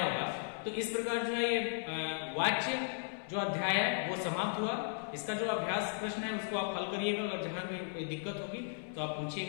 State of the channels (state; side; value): silent; right; 54 dB below the other